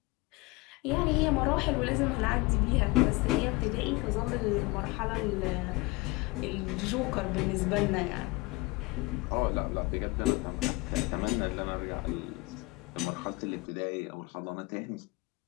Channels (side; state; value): right; quieter; 24.1 dB